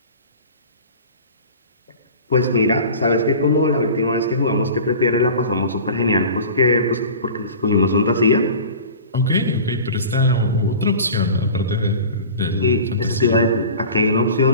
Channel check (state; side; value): inverted; both; correlation -0.39